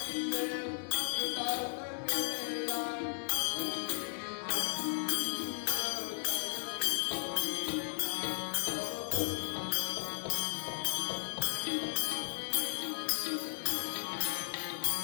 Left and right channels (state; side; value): silent; right; digital silence